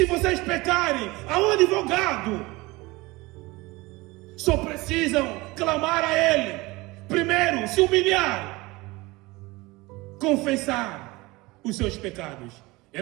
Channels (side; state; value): left; quieter; 22.1 dB